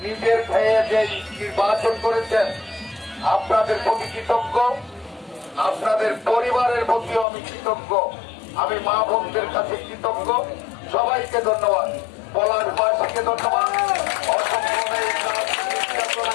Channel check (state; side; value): drops out; right; at 7.2 s